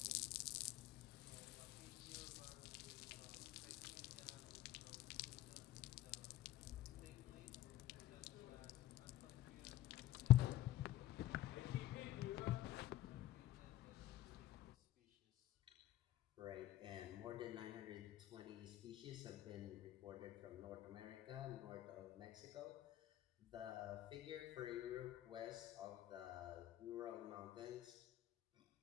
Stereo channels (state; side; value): quieter; right; 14.3 dB